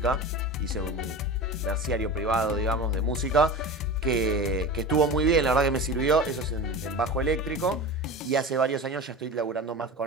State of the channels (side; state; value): both; normal; correlation 0.30